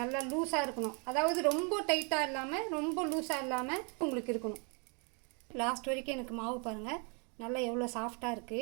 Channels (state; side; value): quieter; left; 35.3 dB